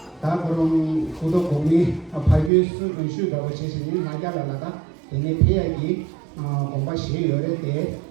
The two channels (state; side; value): drops out; left; at 2.5 s